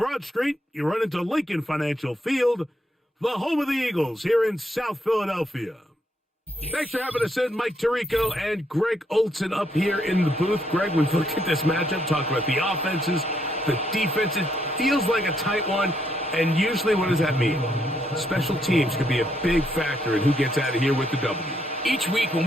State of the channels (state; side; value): normal; both; correlation 0.75